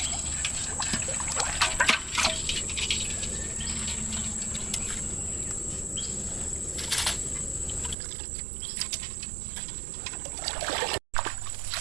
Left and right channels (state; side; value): drops out; left; at 8.0 s